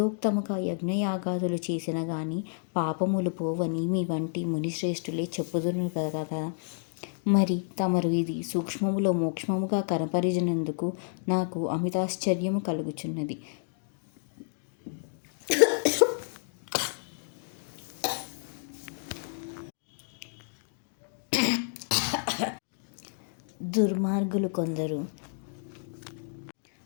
యజ్ఞయాగాదులు చేసిన గాని పాపములు పోవని మీ వంటి మునిశ్రేష్ఠులే చెప్పుదురు కదా. మరి తమరు ఇది సూక్ష్మములో మోక్షముగా కనపరిచినందుకు నాకు అమితాశ్చర్యము కలుగుచున్నది. దుర్మార్గులు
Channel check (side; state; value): right; silent; digital silence